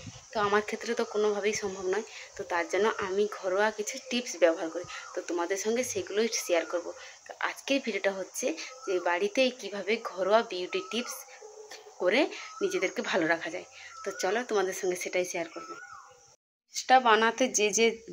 তো আমার ক্ষেত্রে তো কোনোভাবেই সম্ভব নয়। তো তার জন্য আমি ঘরোয়া কিছু টিপস ব্যবহার করি, তো তোমাদের সঙ্গে সেগুলোই শেয়ার করব। তো আজকের ভিডিওটা হচ্ছে যে বাড়িতেই কিভাবে ঘরোয়া বিউটি টিপস করে নিজেদেরকে ভালো রাখা যায়। তো চলো তোমাদের সঙ্গে সেটাই শেয়ার করবো। টা বানাতে যে যে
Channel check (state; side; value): identical; both; correlation 1.00